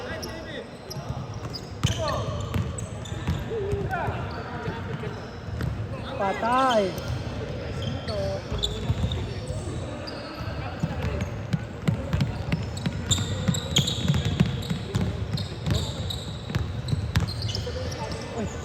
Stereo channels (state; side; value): identical; both; correlation 1.00